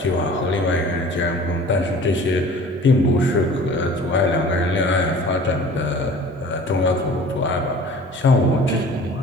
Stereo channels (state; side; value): normal; both; correlation 0.45